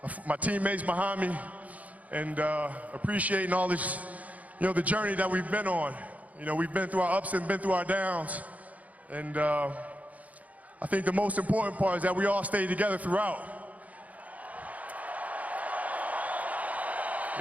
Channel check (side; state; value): left; late; 0.072 ms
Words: my teammates behind me, and appreciating all this, the journey that we've been on. We've been through our ups and been through our downs. And I think the most important part is that we all stayed together throughout.